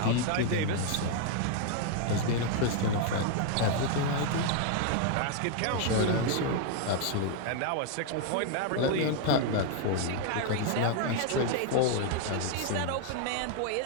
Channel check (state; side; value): different; both; correlation 0.00